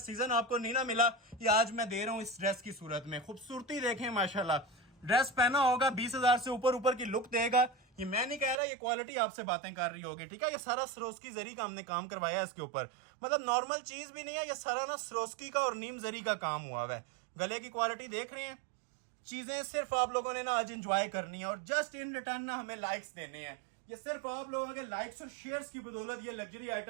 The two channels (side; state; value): left; drops out; at 8.6 s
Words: आपको नहीं ना मिला, ये आज मैं दे रहा हूँ इस ड्रेस की सूरत में। खूबसूरती देखें माशाल्लाह, ड्रेस पहना होगा 20,000 से ऊपर की लुक देगा। ये मैं नहीं कह रहा, ये क्वालिटी आपसे बातें कर रही होगी, ठीक है। ये सारा सरोस्की जरी का हमने काम करवाया इसके ऊपर, मतलब नॉर्मल चीज भी नहीं है, ये सारा ना सरोस्की का और नीम जरी का काम हुआ है। गले की क्वालिटी देख रहे हैं। चीजें सिर्फ आप लोगों ने ना आज एंजॉय करनी है और जस्ट इन रिटर्न ना हमें लाइक्स देने हैं। ये सिर्फ आप लोगों के लाइक्स और शेयर्स की बदौलत ये लग्जरी